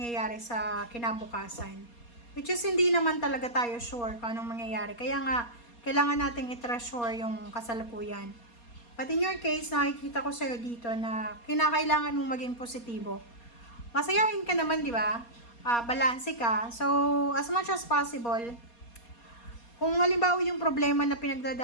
sa kinabukasan. Which is, hindi naman talaga tayo sure kung anong mangyayari. Kaya nga, kailangan nating i-treasure yung kasalukuyan. But in your case, nakikita ko sa'yo dito na kinakailangan mong maging positibo. Masayahin ka naman, di ba? Balanse ka. So, as much as possible, kung halimbawa yung problema na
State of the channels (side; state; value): right; late; 4.2 ms